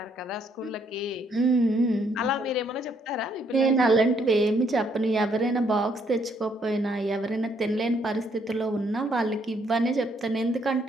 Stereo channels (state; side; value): normal; both; correlation 0.70